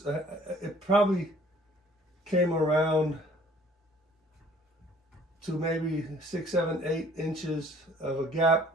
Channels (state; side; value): normal; both; correlation 0.55